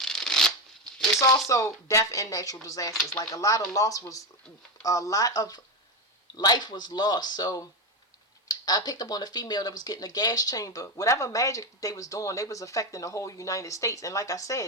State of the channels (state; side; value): normal; both; correlation 0.13